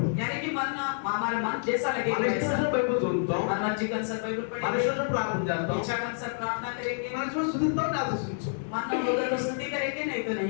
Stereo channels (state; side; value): silent; right; 58 dB below the other